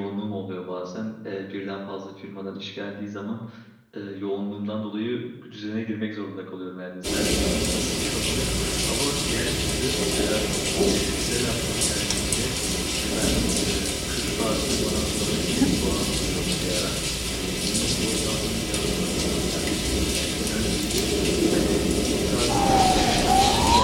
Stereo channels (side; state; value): both; identical; correlation 1.00